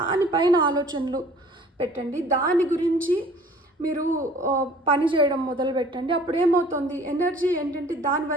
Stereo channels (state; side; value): normal; both; correlation 0.51